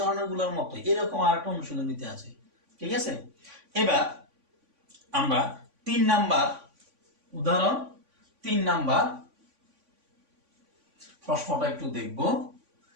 মতো এরকম আরেকটা অনুশীলনীতে আছে। ঠিক আছে, এবার আমরা 3 নাম্বার উদাহরণ, 3 নাম্বার প্রশ্নটা একটু দেখব।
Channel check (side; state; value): left; late; 3.5 ms